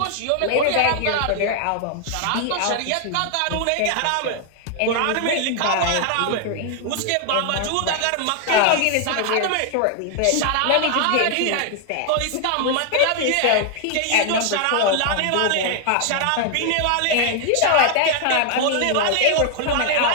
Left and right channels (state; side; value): different; both; correlation 0.00